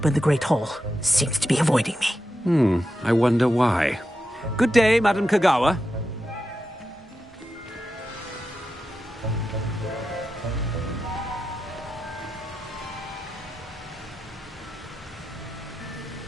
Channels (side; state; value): both; normal; correlation 0.89